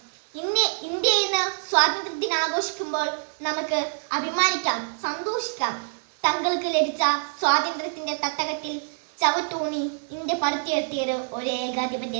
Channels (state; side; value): silent; left; digital silence